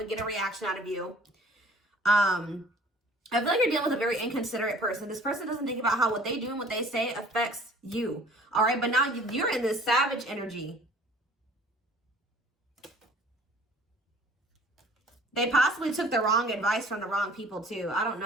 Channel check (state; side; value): normal; both; correlation 0.51